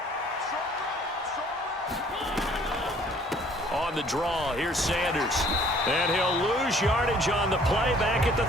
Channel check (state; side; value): normal; both; correlation 0.57